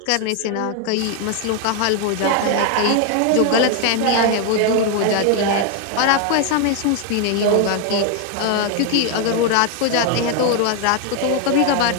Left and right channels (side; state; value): both; different; correlation 0.01